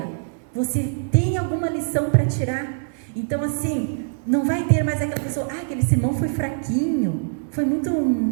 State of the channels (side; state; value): left; silent; digital silence